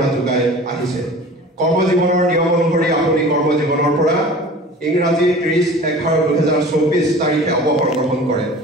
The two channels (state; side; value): normal; both; correlation 0.41